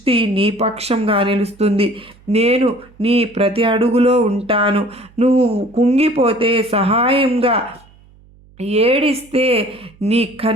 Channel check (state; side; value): noise; right; hum, 28 dB below the sound